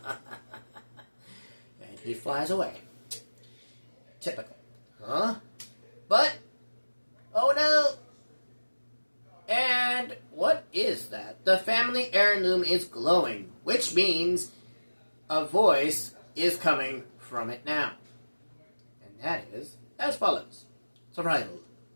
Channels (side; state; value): both; inverted; correlation -1.00